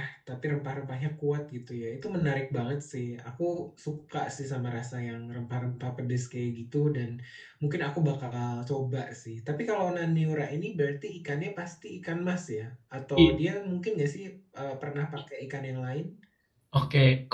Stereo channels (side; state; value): both; identical; correlation 1.00